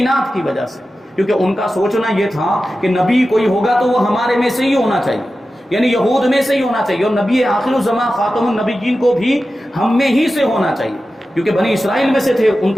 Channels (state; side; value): normal; both; correlation 0.93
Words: کی وجہ سے، کیونکہ ان کا سوچنا یہ تھا کہ نبی کوئی ہوگا تو وہ ہمارے میں سے ہی ہونا چاہیے، یعنی یہود میں سے ہی ہونا چاہیے، اور نبی آخر الزماں خاتم النبیین کو بھی ہم میں ہی سے ہونا چاہیے، کیونکہ بنی اسرائیل میں سے تھے۔ ان